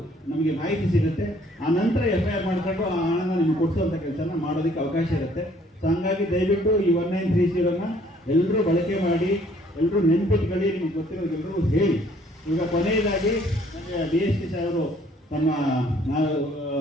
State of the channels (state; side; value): normal; both; correlation 0.61